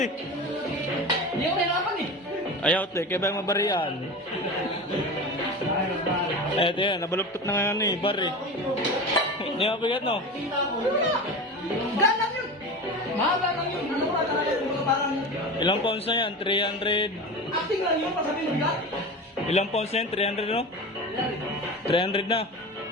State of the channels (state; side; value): normal; both; correlation 0.29